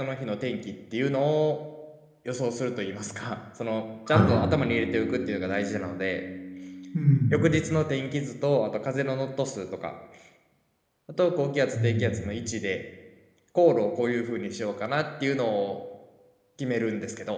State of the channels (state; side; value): identical; both; correlation 1.00